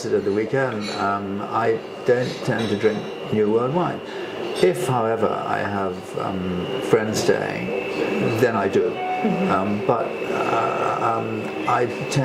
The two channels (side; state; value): both; identical; correlation 1.00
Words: at the weekend, I don't tend to drink New World wine. If, however, I have friends staying, then I do. But I